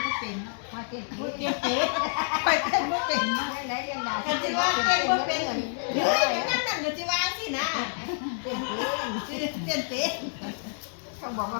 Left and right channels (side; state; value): right; silent; digital silence